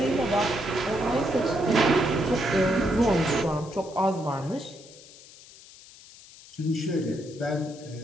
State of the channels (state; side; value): noise; left; hiss, 21 dB below the sound